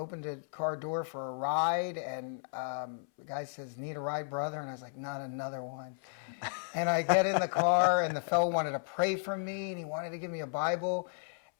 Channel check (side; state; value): right; silent; 55 dB below the other